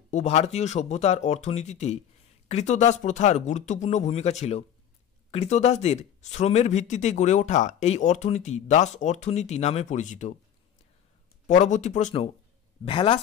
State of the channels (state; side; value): quieter; right; 9.6 dB